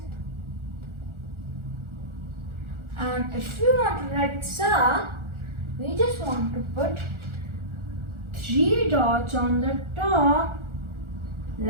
And if we want to write sa, we just want to put 3 dots on the top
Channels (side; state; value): left; late; 1.4 ms